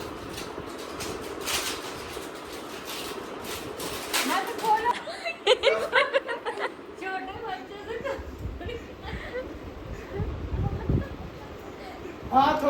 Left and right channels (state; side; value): identical; both; correlation 1.00